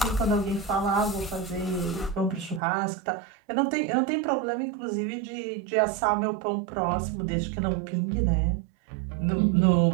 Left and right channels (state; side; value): drops out; left; at 2.6 s